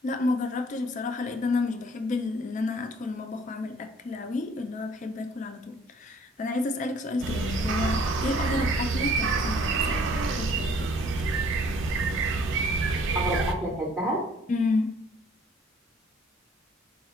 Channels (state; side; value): normal; both; correlation 0.58